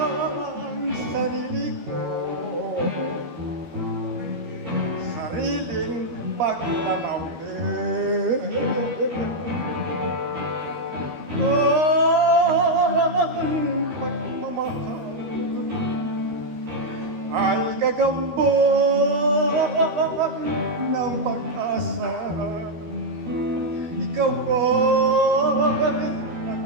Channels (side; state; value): left; late; 13 ms